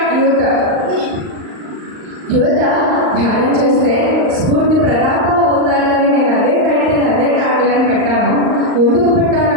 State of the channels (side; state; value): left; late; 39 ms